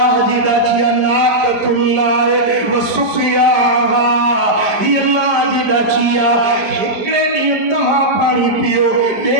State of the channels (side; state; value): left; late; 4.9 ms